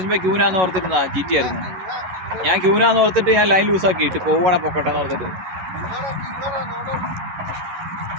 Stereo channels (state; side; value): late; left; 11 ms